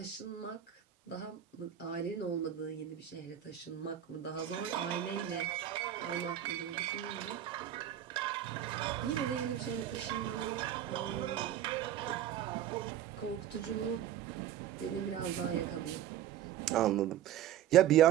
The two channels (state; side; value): quieter; left; 11.0 dB